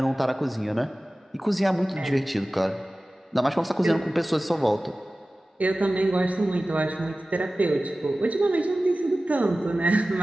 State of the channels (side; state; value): both; normal; correlation 0.96